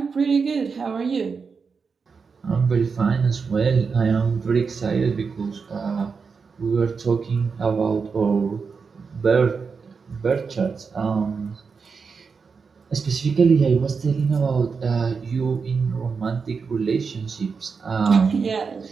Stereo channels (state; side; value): quieter; left; 5.3 dB